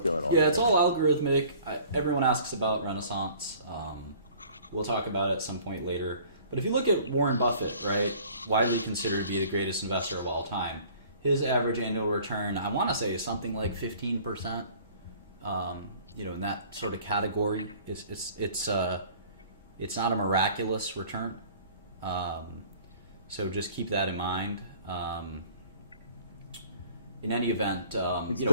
going on? Yeah, it's all algorithmic. Everyone asks about Renaissance. We'll talk about it at some point later. But if you look at Warren Buffett, right, widely considered to be the greatest investor of all time, his average annual return, I want to say, is something like 15%. In that sort of category. It's not a miraculous return. So just keep that in mind. In any event, it's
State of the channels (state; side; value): inverted; both; correlation -0.51